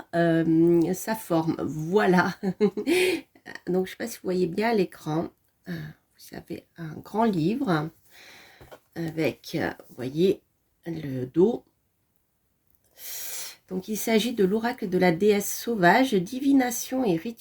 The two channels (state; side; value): identical; both; correlation 1.00